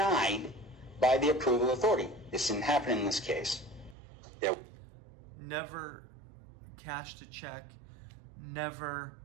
by the approval authority. This didn't happen in this case. Never cashed a check, never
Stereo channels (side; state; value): left; drops out; at 4.0 s